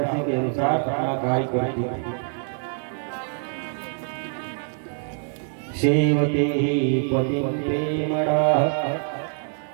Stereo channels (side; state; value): left; silent; 62 dB below the other